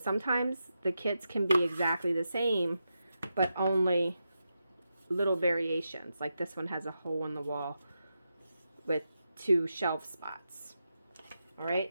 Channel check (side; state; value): both; inverted; correlation -0.87